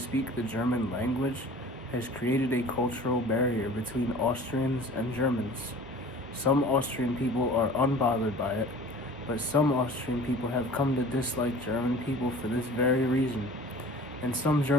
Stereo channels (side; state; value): both; normal; correlation 0.43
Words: the German language has created a cultural barrier between Austrians and Germans. Some Austrian people are unbothered by it, but some Austrian people have come to dislike German people for this very reason. And some